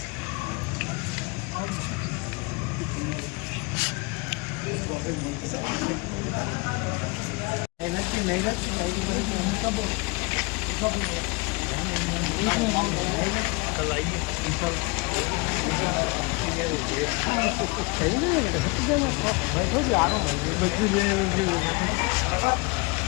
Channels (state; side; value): quieter; right; 28.0 dB